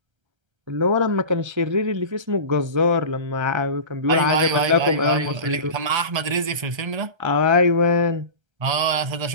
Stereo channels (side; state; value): left; late; 1.3 ms